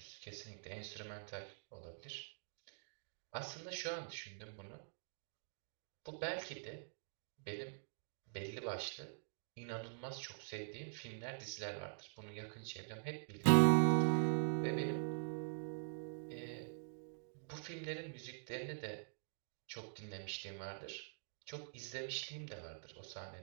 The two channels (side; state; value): left; silent; digital silence